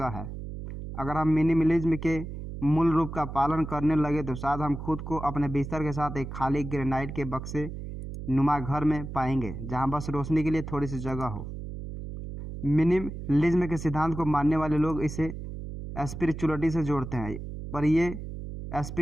है। अगर हम मिनिमलिज्म के मूल रूप का पालन करने लगे तो शायद हम खुद को अपने बिस्तर के साथ एक खाली ग्रेनाइट के बक्से नुमा घर में पाएंगे, जहां बस रोशनी के लिए थोड़ी सी जगह हो। मिनिमलिज्म के सिद्धांत को मानने वाले लोग इसे स्पिरिचुअलिटी से जोड़ते हैं, पर ये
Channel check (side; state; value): right; noise; hum, 8 dB below the sound